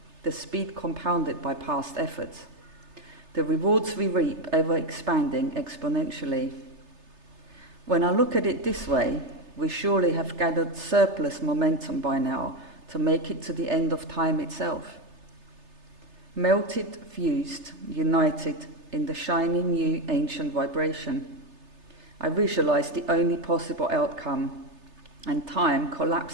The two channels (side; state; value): left; late; 3.3 ms